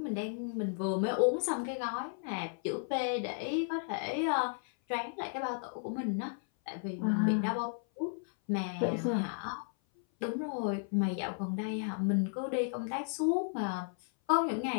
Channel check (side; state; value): right; silent; 55 dB below the other